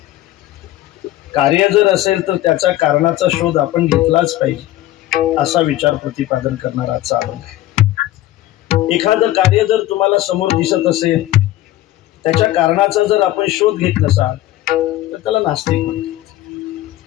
कार्य जर असेल तर त्याचा कारणाचा शोध आपण घेतलाच पाहिजे असा विचार प्रतिपादन करणारा आजचा अभंग आहे. एखादं कार्य जर तुम्हाला समोर दिसत असेल, त्याच्या कारणाचा जर आपण शोध घेत नसाल तर त्याला नास्तिक म्हणतात.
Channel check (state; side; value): quieter; right; 14.9 dB